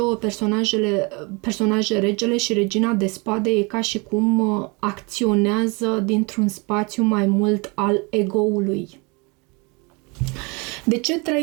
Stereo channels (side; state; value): left; quieter; 29.2 dB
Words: personaje, regele și regina de spade, e ca și cum acționează dintr-un spațiu mai mult al ego-ului. De ce